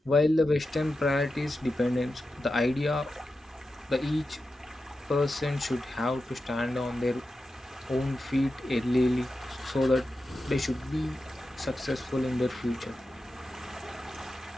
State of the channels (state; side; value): normal; both; correlation 0.91